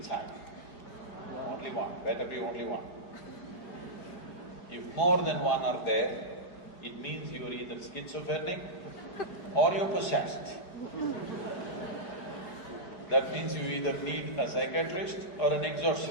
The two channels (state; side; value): late; right; 4.8 ms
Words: Only one, better be only one. If more than one are there, it means you're either schizophrenic or you're possessed. That means you either need a psychiatrist or an